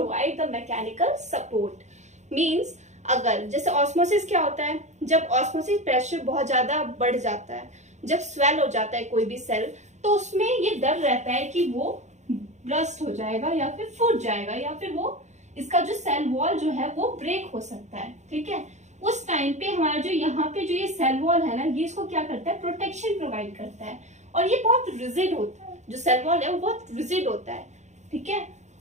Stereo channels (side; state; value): left; late; 0.34 ms